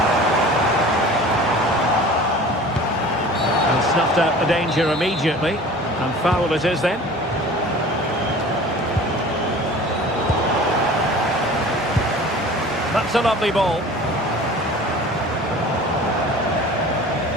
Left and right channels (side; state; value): both; normal; correlation 0.42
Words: snuffed out the danger immediately. And foul it is then. That's a lovely ball.